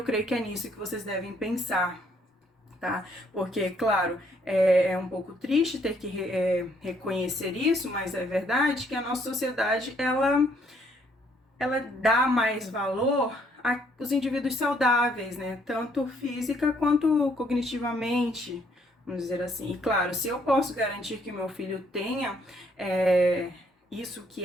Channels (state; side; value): normal; both; correlation 0.68